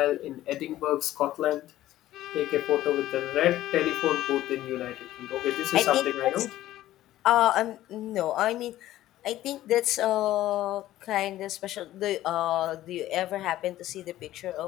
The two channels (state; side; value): quieter; right; 14.4 dB